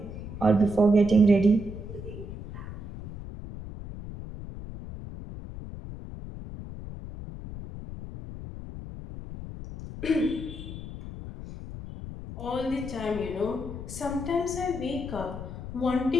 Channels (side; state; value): left; noise; rumble, 10 dB below the sound